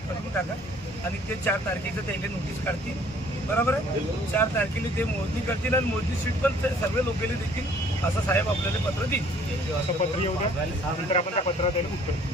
करून टाका आणि ते 4 तारखेचं त्याला नोटीस काढतील. बरोबर आहे. 4 तारखेला ते मोजणी करतील आणि मोजणी सीट पण सर्व लोकांना देतील असं साहेब आपल्याला पत्र देईल. असं पत्र येऊ द्या नंतर आपण त्या पत्रात द्यायला उत्तर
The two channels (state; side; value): normal; both; correlation 0.57